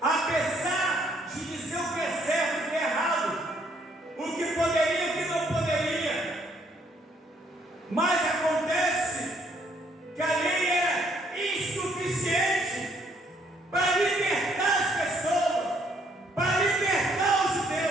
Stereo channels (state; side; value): normal; both; correlation 0.68